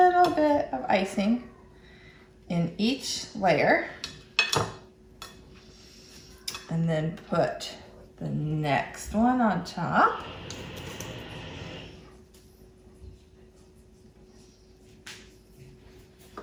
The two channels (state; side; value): identical; both; correlation 1.00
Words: bit of icing in each layer. And then put the next one on top.